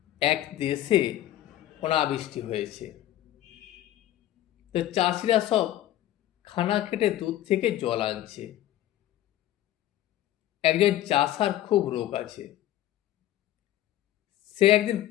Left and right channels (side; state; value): right; quieter; 13.4 dB